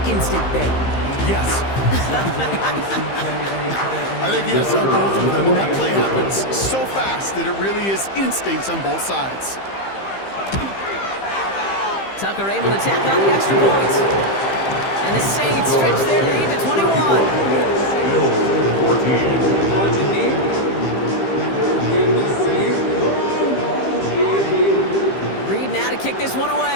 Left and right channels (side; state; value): right; late; 15 ms